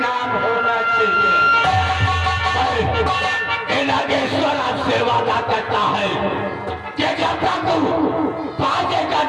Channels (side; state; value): both; identical; correlation 1.00